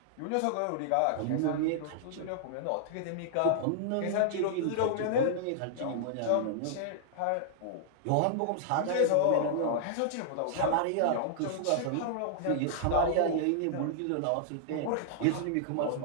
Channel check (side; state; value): both; different; correlation -0.01